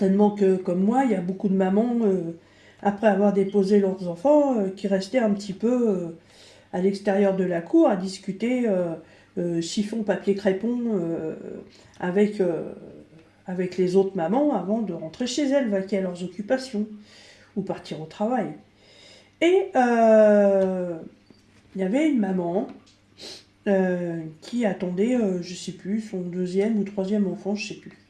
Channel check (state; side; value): identical; both; correlation 1.00